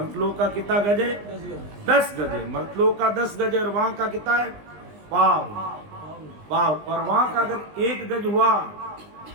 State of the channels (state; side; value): late; left; 20 ms